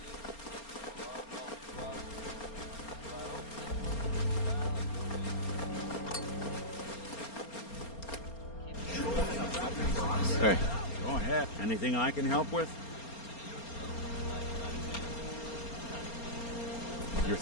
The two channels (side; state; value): right; late; 4.3 ms